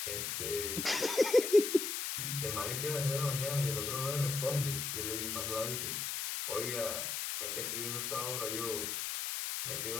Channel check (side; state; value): left; noise; hiss, 2 dB below the sound